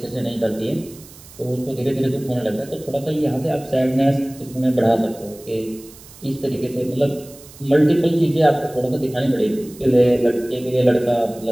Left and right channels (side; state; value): right; noise; hiss, 21 dB below the sound